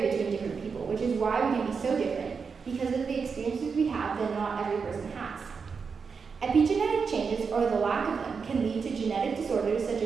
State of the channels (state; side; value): quieter; left; 5.5 dB